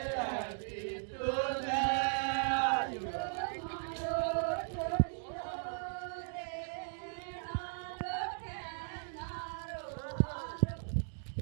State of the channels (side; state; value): left; silent; digital silence